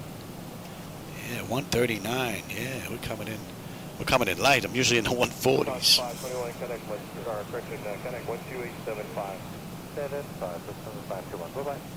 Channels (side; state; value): both; identical; correlation 1.00